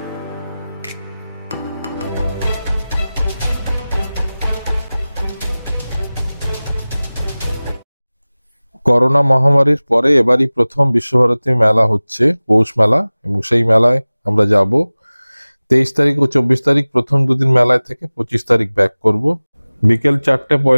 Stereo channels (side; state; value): both; inverted; correlation -0.99